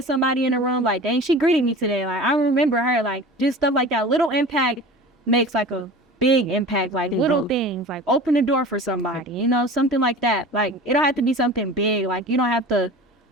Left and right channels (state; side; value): normal; both; correlation 0.37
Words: somebody in the room, like, dang, she greeted me today. Like, I remember her, like, just stuff like that. Little impact makes like a big impact, like little things, like open the door for somebody, you know, something like that. Like, it don't have to be something big. Like, you don't have to,